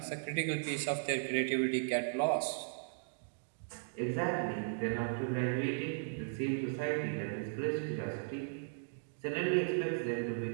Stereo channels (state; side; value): silent; left; digital silence